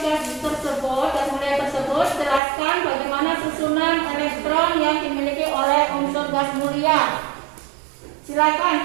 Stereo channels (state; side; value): drops out; left; at 2.4 s